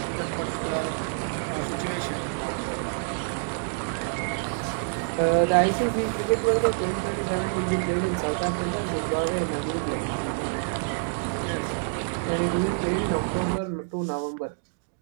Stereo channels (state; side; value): silent; left; digital silence